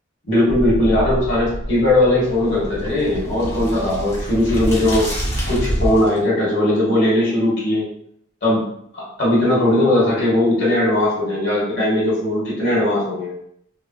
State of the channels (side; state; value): both; normal; correlation 0.55